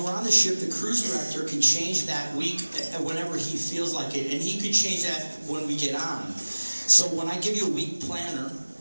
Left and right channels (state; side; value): inverted; both; correlation -1.00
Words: we're on the ship, the cruise director can change that week whenever he feels like it, and he could change that when we get on. So when I give you a week planner,